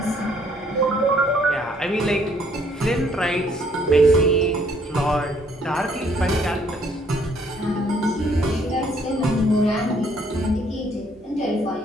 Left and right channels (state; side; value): normal; both; correlation 0.65